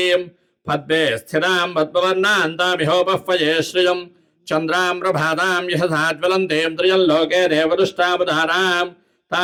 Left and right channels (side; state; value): both; identical; correlation 1.00